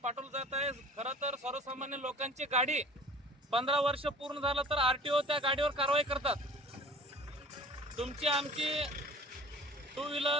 जात आहे। खरं तर सर्वसामान्य लोकांची गाडी 15 वर्ष पूर्ण झालं तर आरटीओ त्या गाडीवर कारवाई करतात। तुमची आमची 2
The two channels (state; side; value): normal; both; correlation 0.45